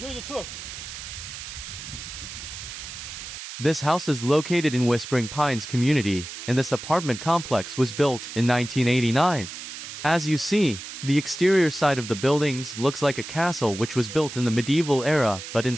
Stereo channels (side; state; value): right; noise; hiss, 10 dB below the sound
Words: the tour. This house is located in Whispering Pines community, and this apartment complex was built in 1989. As you see, the exterior side of the buildings looks like a castle which was built in the medieval era, but